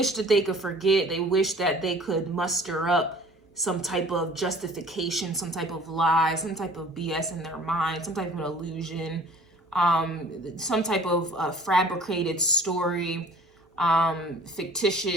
that they could forget. They wish that they could muster up some type of justification, some type of lie, some type of BS in their mind, some type of illusion, some type of fabricated story,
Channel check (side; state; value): both; normal; correlation 0.49